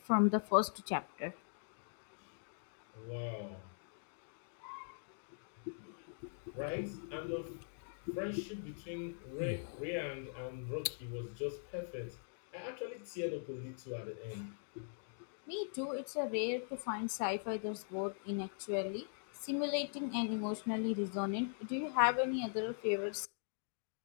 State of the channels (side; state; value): right; silent; digital silence